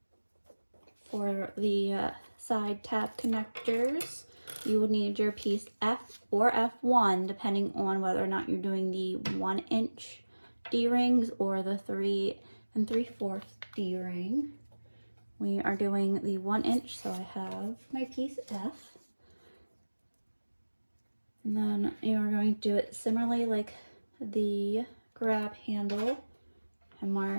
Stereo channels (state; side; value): inverted; both; correlation -1.00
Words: For the side tab connectors, you will need your piece F or F1 depending on whether or not you're doing the 1-inch D-rings or the 3 3/4 D-ring. We are doing the 1-inch, so I have my piece F. And then you are going to do it similarly like the grab handle and